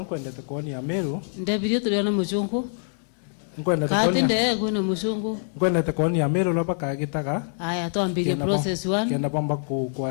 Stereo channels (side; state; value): right; silent; 59 dB below the other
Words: ndete koni ya Meru ndabiro tuliona mujungu kwenda kati ndeye kuna mujungu kwenda tekoni ya Meru loba kagitaga aya tuambie process 1 kenda bamba ku